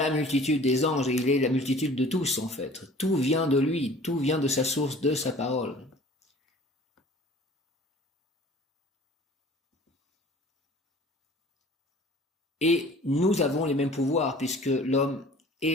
multitude des anges et il est la multitude de tous en fait. Tout vient de lui, tout vient de sa source, de sa parole. Et nous avons les mêmes pouvoirs puisque l'homme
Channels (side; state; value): both; normal; correlation 0.48